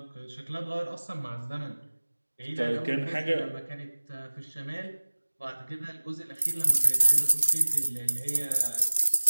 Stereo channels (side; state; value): both; inverted; correlation -1.00